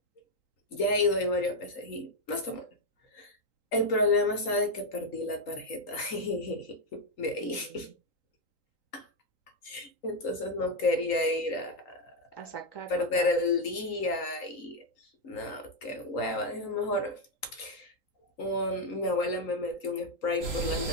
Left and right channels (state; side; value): late; right; 3.8 ms